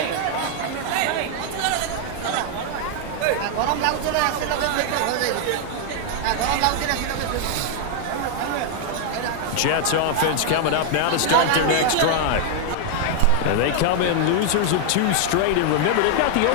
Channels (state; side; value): different; both; correlation 0.00